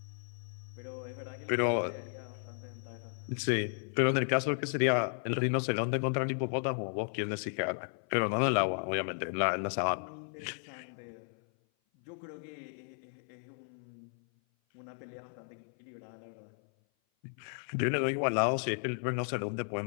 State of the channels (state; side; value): silent; right; 55 dB below the other